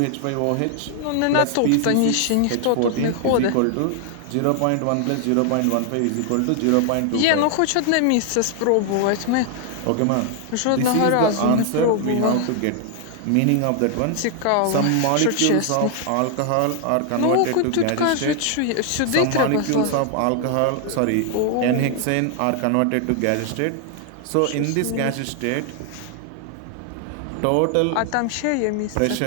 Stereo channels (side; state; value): both; different; correlation 0.00